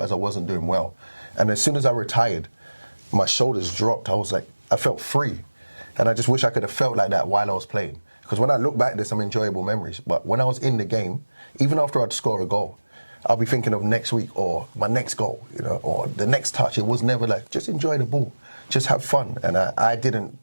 I wasn't doing well. And as soon as I retired, my shoulders dropped. I felt free. And I just wish I could have felt like that while I was playing. Because when I look back, there's some enjoyable memories. But when I was in the game, even after I'd score a goal, I'll be thinking of next week or my next goal, or the next touch. It was never just enjoy the ball. Just have fun. And I didn't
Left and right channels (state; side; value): inverted; both; correlation -1.00